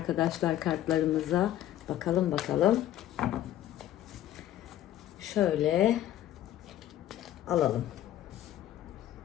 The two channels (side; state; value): right; quieter; 12.7 dB